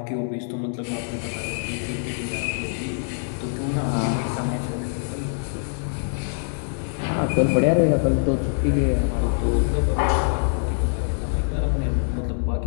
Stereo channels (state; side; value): silent; right; digital silence